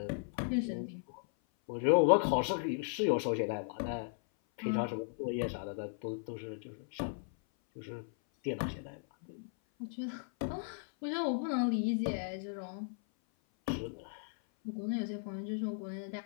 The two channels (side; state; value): right; silent; 54 dB below the other